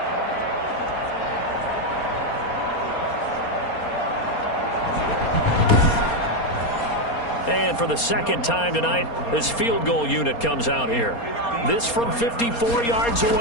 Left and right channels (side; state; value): right; late; 4.3 ms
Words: And for the second time tonight, this field goal unit comes out here. This from 54 yards